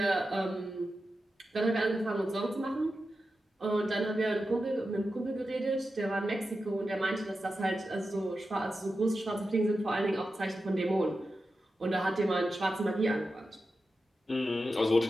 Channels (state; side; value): normal; both; correlation 0.91